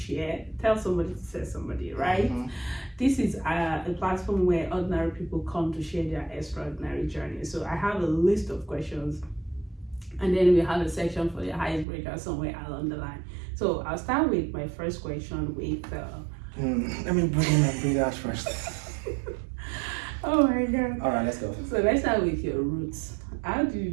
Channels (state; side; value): drops out; left; at 11.9 s